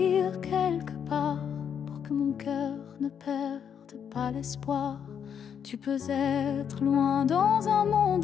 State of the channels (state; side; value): quieter; right; 8.0 dB